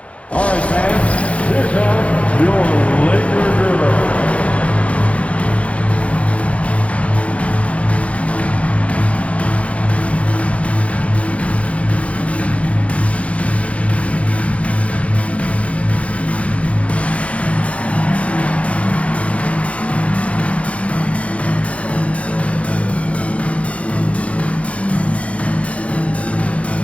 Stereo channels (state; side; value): late; right; 0.063 ms